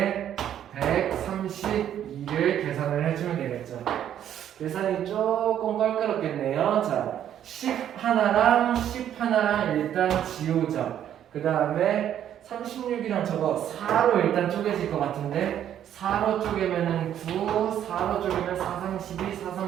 132를 계산을 해주면 되겠죠. 계산이 조금 껄끄럽겠네요. 자, 10 하나랑 10 하나랑 일단 지우죠. 그 다음에 36이랑 저거 4로 일단 쪼개질 것 같은데 4로 쪼개면은 9, 4로 쪼개면 4, 3, 12, 4,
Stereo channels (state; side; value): quieter; left; 10.4 dB